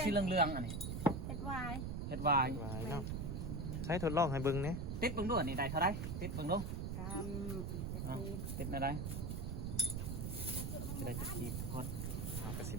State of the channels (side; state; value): right; noise; rumble, 2 dB below the sound